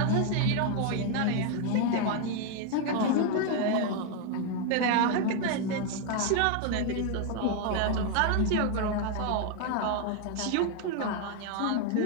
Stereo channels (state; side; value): different; both; correlation 0.01